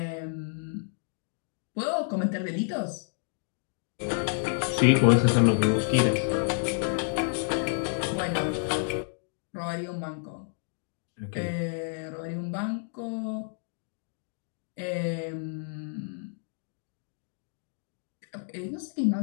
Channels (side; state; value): right; silent; digital silence